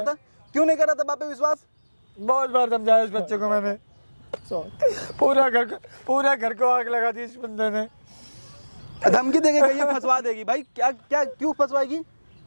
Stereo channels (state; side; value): inverted; both; correlation -1.00